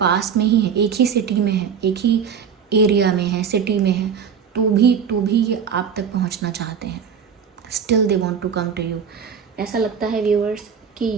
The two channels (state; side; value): quieter; left; 7.1 dB